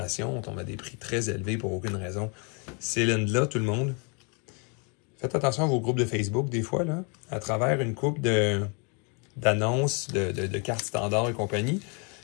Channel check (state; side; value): quieter; right; 34.9 dB